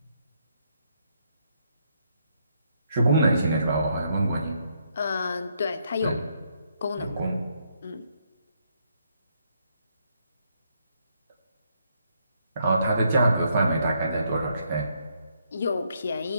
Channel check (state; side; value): inverted; both; correlation -0.74